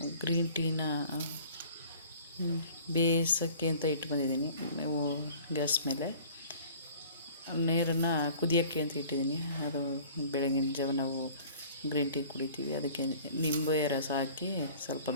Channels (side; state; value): both; inverted; correlation -0.48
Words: ಗ್ರೀನ್ ಟೀನ ಬೇಯಿಸೋಕ್ಕೆ ಅಂತ ಇಟ್ಟು ಬಂದಿದ್ದೀನಿ. ಗ್ಯಾಸ್ ಮೇಲೆ ನೀರನ್ನು ಕುದಿಯೋಕ್ಕೆ ಅಂತ ಇಟ್ಟಿದ್ದೀನಿ. ಅದು ಬೆಳಗಿನ ಜಾವ ನಾವು ಗ್ರೀನ್ ಟೀ ಕುಡಿತೀವಿ. ಅದಕ್ಕೆ ನಿಂಬೆ ರಸ ಹಾಕಿ ಸ್ವಲ್ಪ